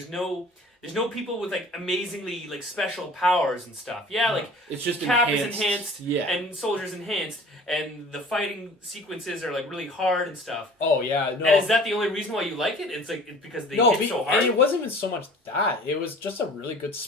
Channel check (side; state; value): both; normal; correlation 0.46